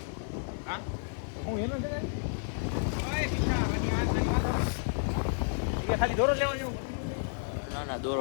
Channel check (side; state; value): right; silent; 57 dB below the other